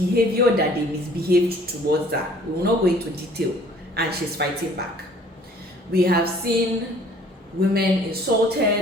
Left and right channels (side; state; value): both; normal; correlation 0.55